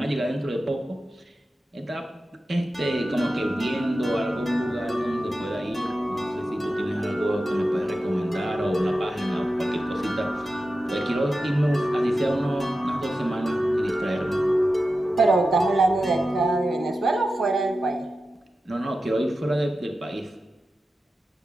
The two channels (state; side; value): normal; both; correlation 0.92